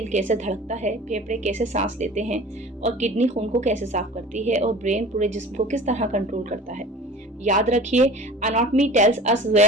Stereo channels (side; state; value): both; normal; correlation 0.40